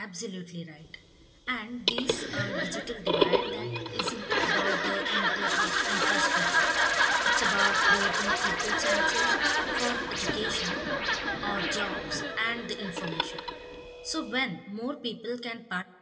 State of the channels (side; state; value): both; identical; correlation 1.00